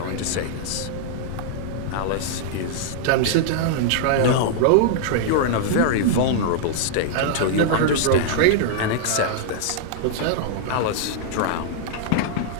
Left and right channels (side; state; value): both; different; correlation -0.01